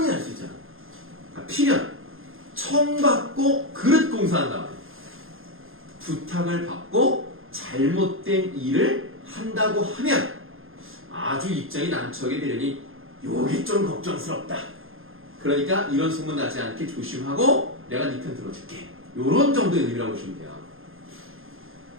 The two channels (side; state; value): left; late; 0.60 ms